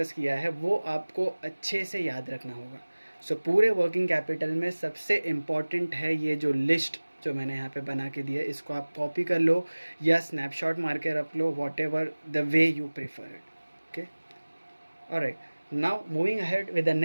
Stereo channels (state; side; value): inverted; both; correlation -1.00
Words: किया है वो आपको अच्छे से याद रखना होगा। सो पूरे वर्किंग कैपिटल में सबसे इम्पॉर्टेंट है ये जो लिस्ट जो मैंने यहाँ पे बना के दिया है, इसको आप कॉपी कर लो या स्नैपशॉट मार के रख लो, whatever the way you prefer it, okay. Alright, now moving ahead with the